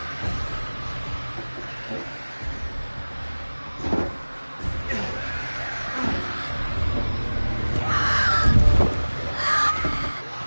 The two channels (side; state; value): both; inverted; correlation -1.00